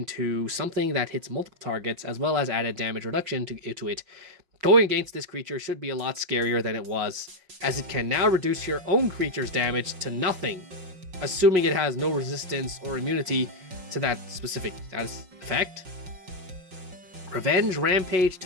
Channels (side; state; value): left; late; 5.4 ms